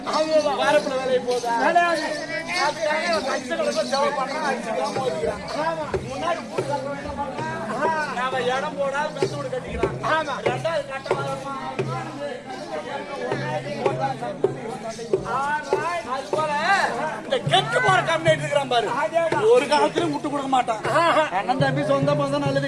வாரப்புல வேலையை போதா இடம் போடாது மெத்த வீடு கட்டிக்கிறான் 2வது கட்ட அது போல இந்த கெட்டு போற கம்யூனிட்டி இருக்கிறான் பாரு ஒரு காலத்திலும் விட்டு கொடுக்க மாட்டான் அண்ணன் தம்பி சொந்த பந்தம் நல்லது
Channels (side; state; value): both; identical; correlation 1.00